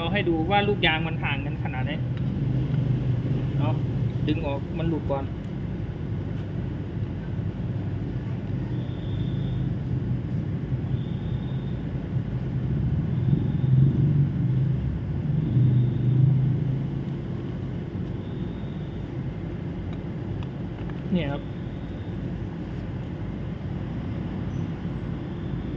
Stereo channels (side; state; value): both; identical; correlation 1.00